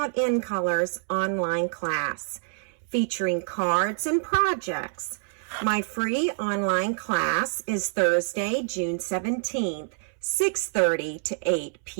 in colors online class featuring cards and projects. My free online class is Thursday, June 17th, 6:30 to 8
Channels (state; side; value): silent; left; 60 dB below the other